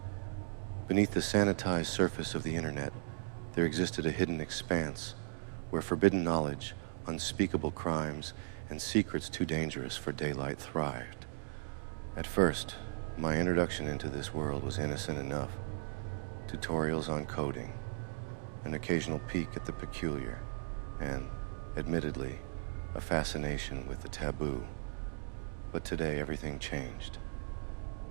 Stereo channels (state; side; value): silent; left; digital silence